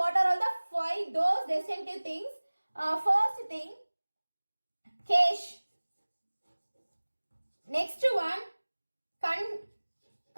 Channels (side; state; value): both; inverted; correlation -1.00